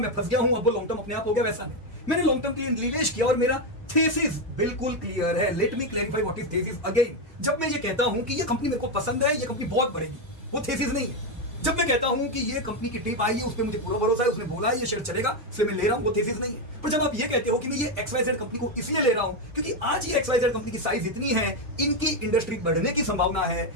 फंस गया हूं, अब वो लॉन्ग टर्म अपने आप हो गया, वैसा नहीं। मैंने लॉन्ग टर्म के लिए निवेश किया और मेरा थीसिस बिल्कुल क्लियर है। Let me clarify what is thesis again. जब मैं ये कहता हूं कि ये कंपनी मेरे को पसंद है, ये कंपनी बहुत बढ़ेगी, वो थीसिस नहीं है। जब मैं कहता हूं कि ये कंपनी की टिप आई है, उस पर मुझे पूरा भरोसा है, उसने बोला है ये शेयर चलेगा, इसलिए मैं ले रहा हूं, वो थीसिस नहीं है। पर जब आप ये कहते हो कि मैं ये XYZ कंपनी को इसलिए ले रहा हूं क्योंकि आज ये XYZ कंपनी की साइज इतनी है, इनकी इंडस्ट्री बढ़ने की संभावना है,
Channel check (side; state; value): both; normal; correlation 0.07